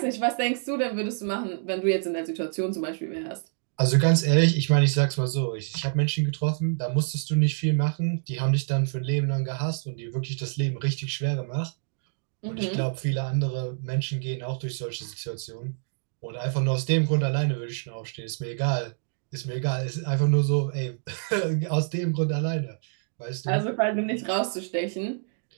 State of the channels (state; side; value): silent; left; digital silence